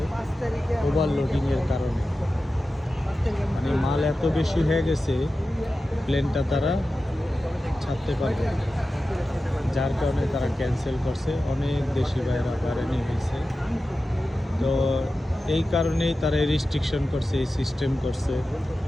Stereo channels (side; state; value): both; normal; correlation 0.93